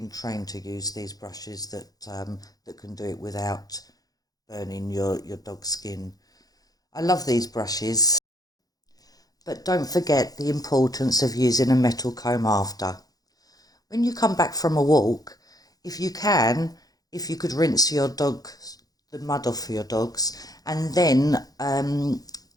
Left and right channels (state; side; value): late; right; 0.18 ms